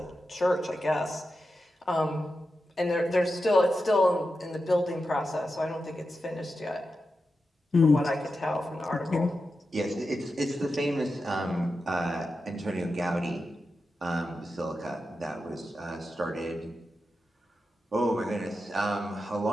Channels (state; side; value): normal; both; correlation 0.90